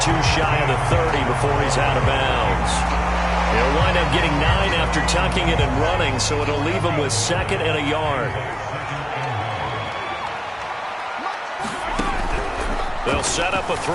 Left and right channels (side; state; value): both; identical; correlation 1.00